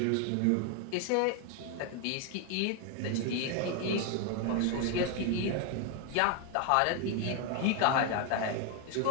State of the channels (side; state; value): both; different; correlation 0.01